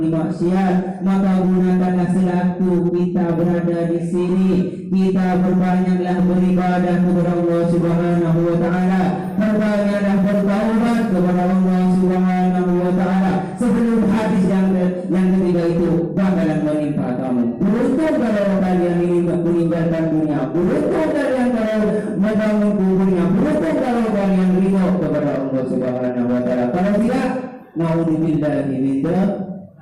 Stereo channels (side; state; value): both; identical; correlation 1.00